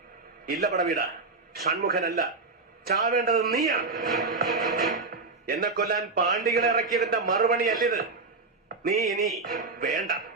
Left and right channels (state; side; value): quieter; left; 3.9 dB